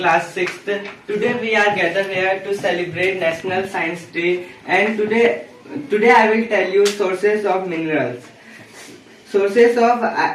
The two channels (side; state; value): both; identical; correlation 1.00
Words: 6th. Today we are gathered here to celebrate National Science Day, and today I will tell you sources of minerals. Sources